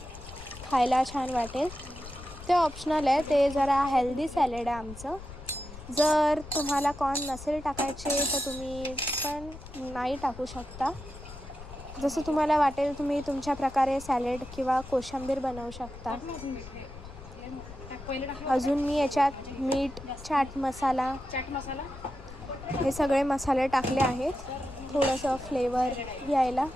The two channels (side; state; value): left; noise; rumble, 14 dB below the sound